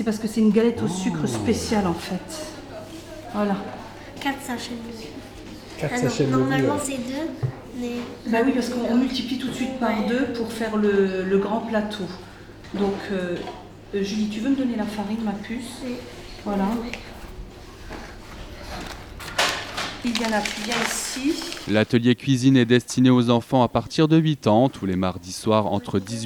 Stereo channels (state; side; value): identical; both; correlation 1.00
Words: parce que c'est une galette au sucre spéciale en fait. Voilà. 4 sachets de levure. 4 sachets de levure. Normalement c'est 2, mais Bah oui, parce qu'on multiplie tout de suite par 2 pour faire le grand plateau. Donc, Julie, tu veux me donner la farine, ma puce? Oui. Voilà. Iliana, tu viens ici. L'atelier cuisine est destiné aux enfants à partir de 8 ans. Tous les mardis soirs entre